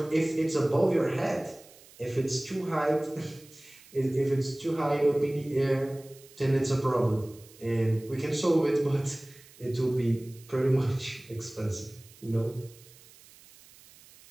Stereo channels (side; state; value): right; noise; hiss, 24 dB below the sound